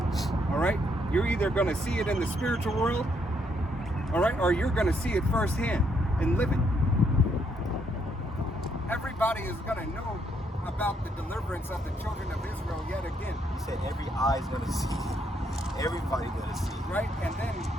All right, you're either going to see it in the spiritual world, all right, or you're going to see it firsthand and live it. Everybody is going to know about the deliverance of the children of Israel yet again, He said every eye's gonna see. Everybody gonna see. right? And then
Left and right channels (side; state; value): both; normal; correlation 0.73